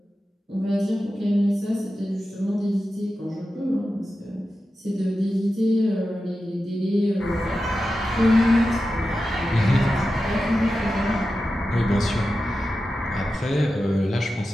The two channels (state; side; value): normal; both; correlation 0.92